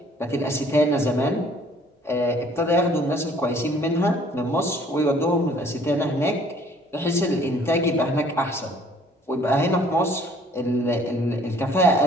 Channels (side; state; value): both; normal; correlation 0.57